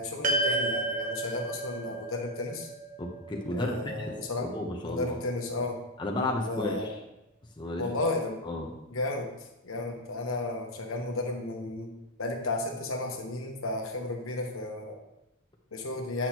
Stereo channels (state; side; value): normal; both; correlation 0.04